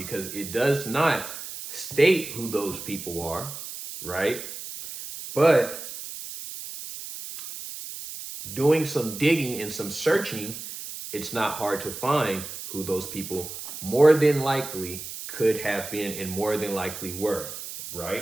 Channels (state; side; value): noise; right; hiss, 10 dB below the sound